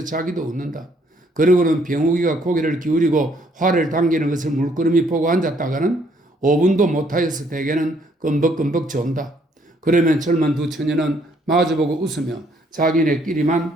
자기도 웃는다. 그러고는 병욱이가 고개를 기울이고 화를 당기는 것을 물끄러미 보고 앉았다가는 5분도 못하여서 대개는 끔벅끔벅 존다. 그러면 젊은 두 처녀는 마주보고 웃으며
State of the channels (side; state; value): both; normal; correlation 0.67